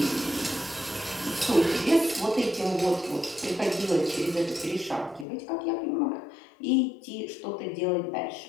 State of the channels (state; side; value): drops out; right; at 5.2 s